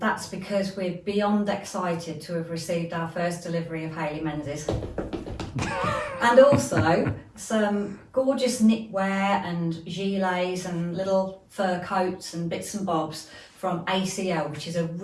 because we're beyond excited to have received our first delivery of Hayley Menzies. And also some gorgeous knitwear and gilets and little fur coats and bits and bobs from ACL, which is a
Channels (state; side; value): identical; both; correlation 1.00